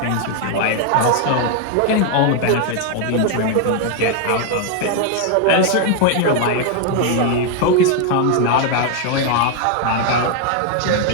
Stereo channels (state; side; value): different; both; correlation 0.00